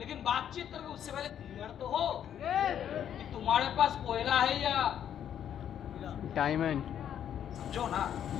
बातचीत करोगे उससे पहले क्लियर तो हो कि तुम्हारे पास कोयला है या Diamond. समझो ना,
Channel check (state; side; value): quieter; right; 9.6 dB